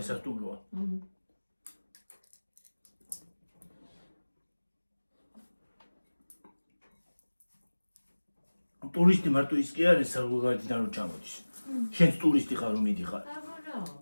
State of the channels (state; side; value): inverted; both; correlation -1.00